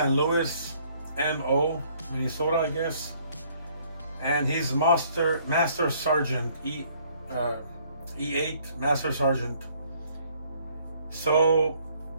Louis, MO, Minnesota, I guess. And he's master sergeant, E8 master sergeant. So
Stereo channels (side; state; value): both; inverted; correlation -0.63